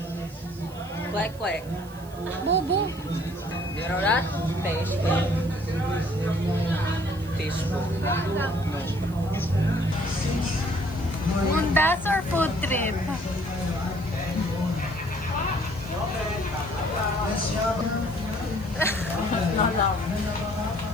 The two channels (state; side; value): noise; right; hiss, 22 dB below the sound